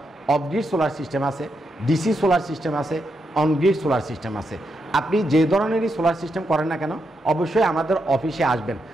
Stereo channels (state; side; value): normal; both; correlation 0.83